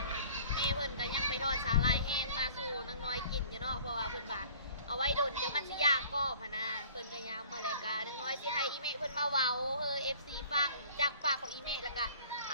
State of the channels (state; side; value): inverted; both; correlation -0.51